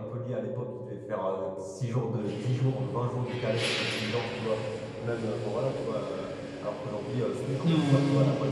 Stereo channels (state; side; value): identical; both; correlation 1.00